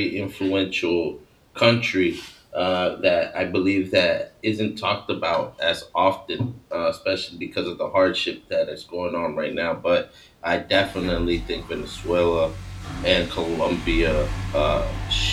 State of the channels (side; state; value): both; identical; correlation 1.00